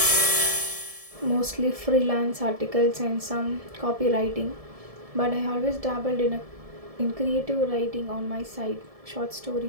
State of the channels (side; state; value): left; late; 1.7 ms